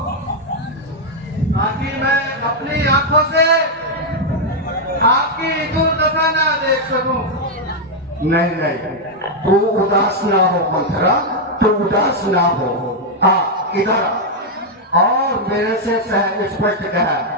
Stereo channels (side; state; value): both; normal; correlation -0.01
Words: ताकि मैं अपनी आंखों से आपकी दुर्दशा ना देख सकूं। नहीं नहीं, तू उदास ना हो मंथरा, तू उदास ना हो। आ इधर आ, और मेरे से सह स्पष्ट कह